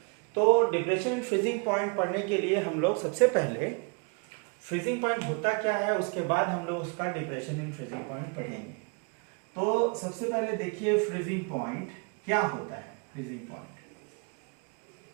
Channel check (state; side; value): quieter; left; 33.8 dB